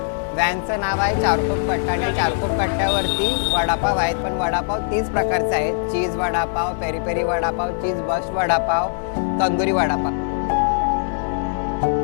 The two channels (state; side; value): silent; right; 65 dB below the other